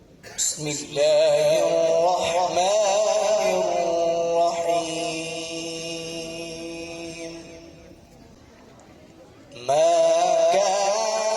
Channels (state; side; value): identical; both; correlation 1.00